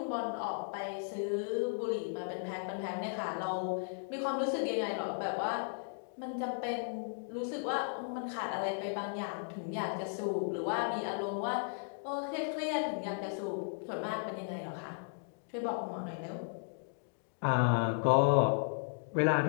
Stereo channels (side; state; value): right; silent; digital silence